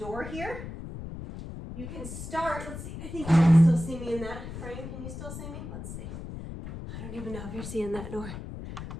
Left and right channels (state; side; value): noise; left; rumble, 9 dB below the sound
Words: here. You can start, let's see, I think you can still see me in that frame. Can you still see me? Let's see. I don't even know if you're seeing that door.